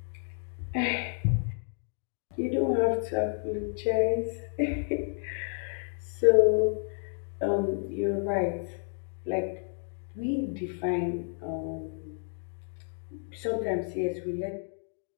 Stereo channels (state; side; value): silent; right; digital silence